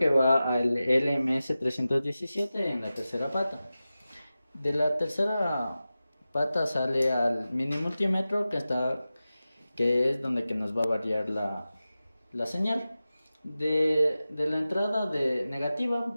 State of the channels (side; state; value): both; inverted; correlation -0.95